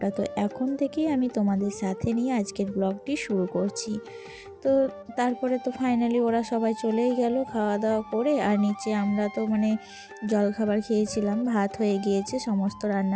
তো এখন থেকেই আমি তোমাদের সাথে নিয়ে আজকের ব্লগটি শুরু করছি। তো তারপরে তো ফাইনালি ওরা সবাই চলেই গেল খাওয়া দাওয়া করে। আর নিচে আমরা তো মানে জলখাবার খেয়েছিলাম, ভাত হয়ে গিয়েছে সমস্ত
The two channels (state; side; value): identical; both; correlation 1.00